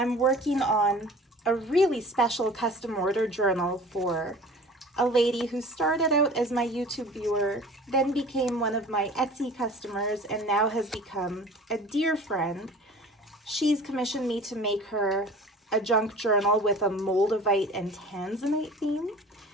working on a really special custom order journal for a lady who started out as my YouTube viewer, then became one of my Etsy customers, and now has become a dear friend. She's commissioned me to make her a junk journal with a moldavite and tanzanite theme.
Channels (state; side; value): normal; both; correlation 0.43